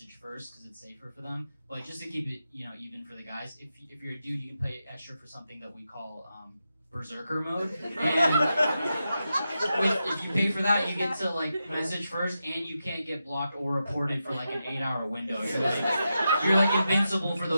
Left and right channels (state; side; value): inverted; both; correlation -0.88